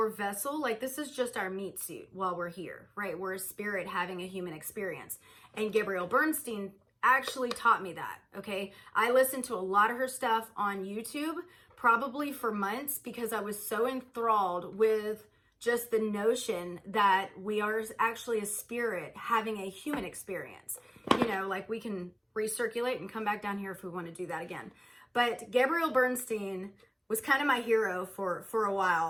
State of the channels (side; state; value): both; identical; correlation 1.00